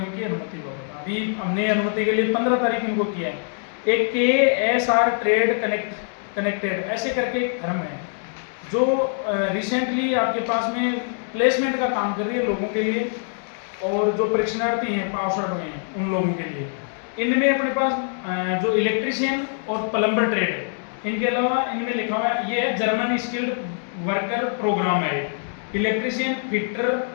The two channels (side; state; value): right; silent; 63 dB below the other